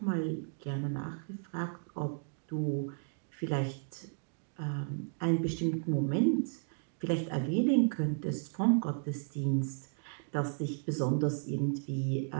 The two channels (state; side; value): silent; left; 55 dB below the other